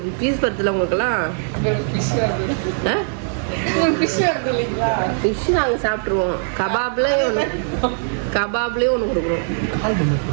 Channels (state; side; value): silent; left; digital silence